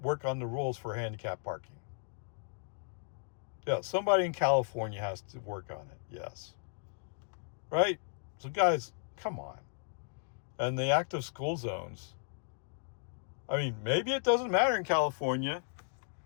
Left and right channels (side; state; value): right; silent; digital silence